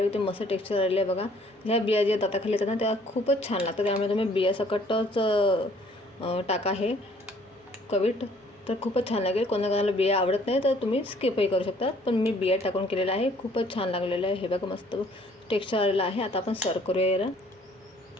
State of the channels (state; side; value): normal; both; correlation 0.59